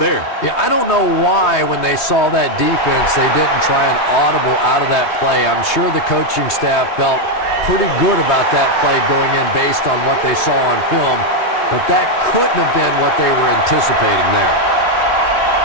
Yeah, I don't know why when they saw that defense, they didn't try an audible out of that play. I'm sure the coaching staff felt pretty good about that play going in based on what they saw on film, but that couldn't have been what they were anticipating there.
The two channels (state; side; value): late; right; 3.4 ms